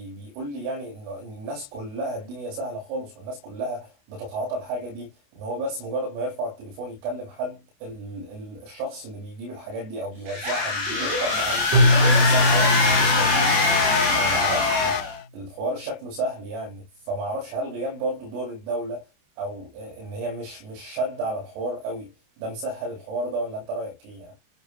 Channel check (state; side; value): late; left; 28 ms